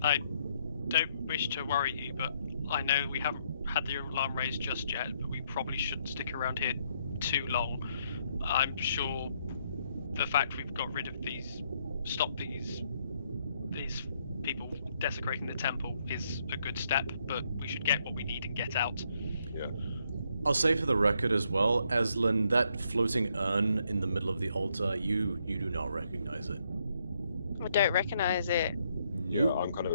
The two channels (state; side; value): inverted; both; correlation -0.73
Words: don't wish to worry you, but I know we haven't had the alarm raised just yet, but we probably shouldn't stick around here too long. I'm sure the fact we've got rid of stopped these people desecrating the temple is a good step, but we should get what we need and get out. Yeah. I'll say for the record as well, Aslan, that floating urn in the middle of the altar, you do not recognize it. I don't recognize it. Yeah, I'm kind